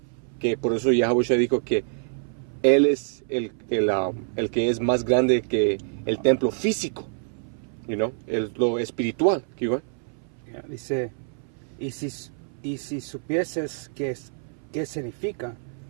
que por eso Yahushua dijo que él es el que es más grande que el templo físico, lo espiritual. Dice, y si supieses qué significa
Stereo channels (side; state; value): left; silent; 59 dB below the other